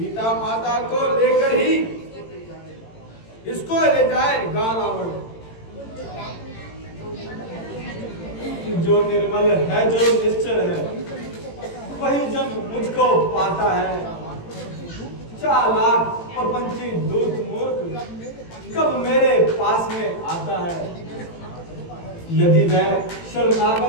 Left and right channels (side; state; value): right; late; 18 ms